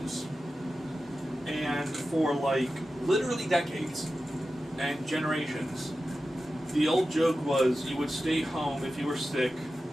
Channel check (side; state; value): both; normal; correlation 0.93